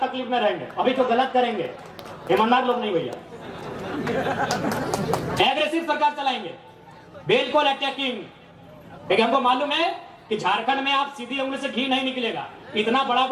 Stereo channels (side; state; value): both; identical; correlation 1.00